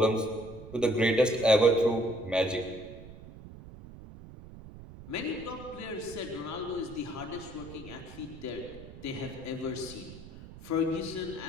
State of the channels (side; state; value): right; noise; rumble, 16 dB below the sound